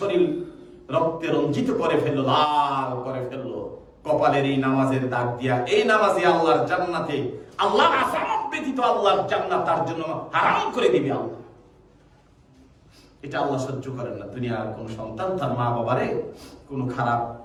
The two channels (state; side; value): identical; both; correlation 1.00